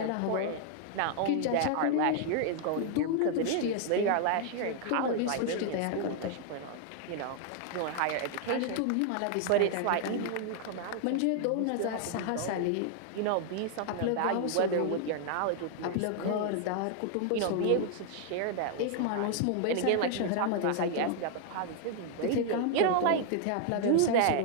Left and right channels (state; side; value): different; both; correlation 0.00